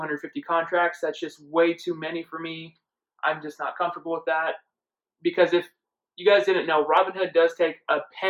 contracts. That's just way too many for me. I'm just not comfortable with that. Because if you guys didn't know, Robinhood does take a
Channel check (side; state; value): both; identical; correlation 1.00